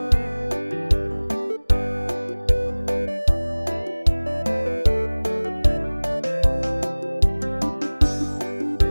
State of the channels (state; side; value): inverted; both; correlation -1.00